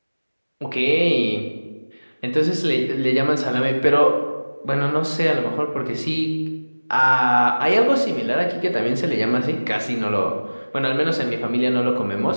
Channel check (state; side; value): inverted; both; correlation -1.00